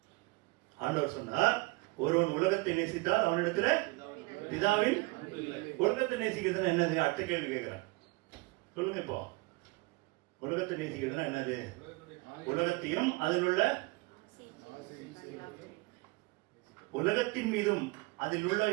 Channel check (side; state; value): left; quieter; 23.7 dB